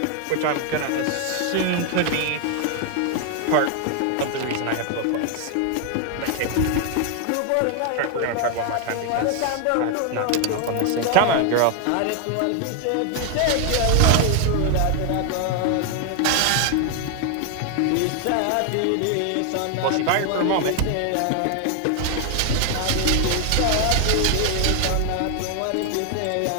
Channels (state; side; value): different; both; correlation 0.00